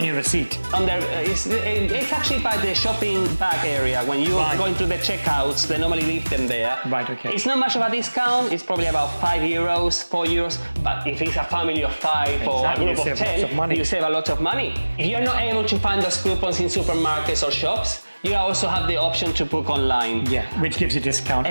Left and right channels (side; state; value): both; inverted; correlation -1.00